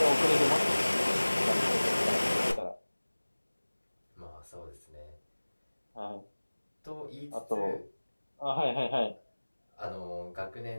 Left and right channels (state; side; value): inverted; both; correlation -1.00